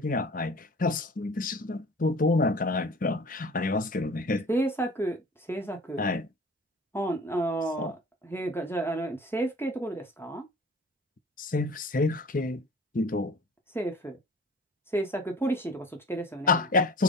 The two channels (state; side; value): normal; both; correlation 0.45